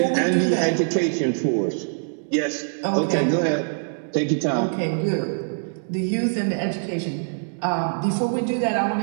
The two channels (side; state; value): left; silent; digital silence